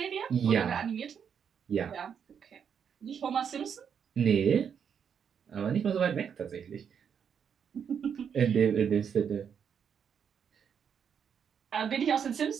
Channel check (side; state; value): left; quieter; 7.5 dB